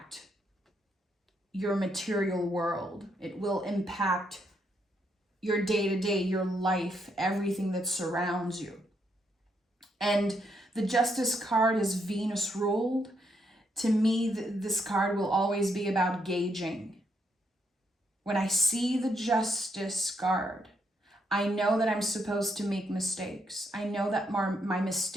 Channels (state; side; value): normal; both; correlation 0.77